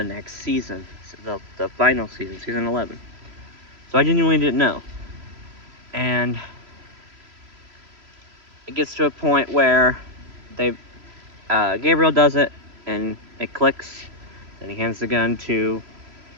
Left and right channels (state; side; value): late; left; 3.0 ms